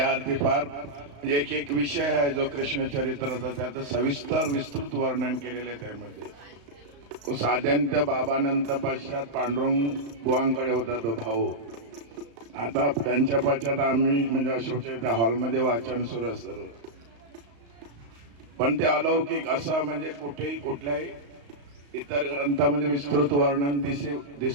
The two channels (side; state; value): left; late; 35 ms